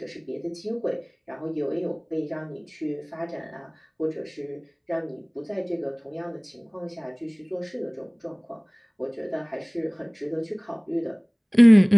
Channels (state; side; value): identical; both; correlation 1.00